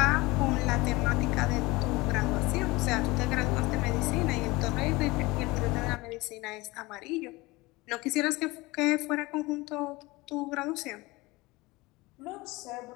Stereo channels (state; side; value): quieter; right; 22.1 dB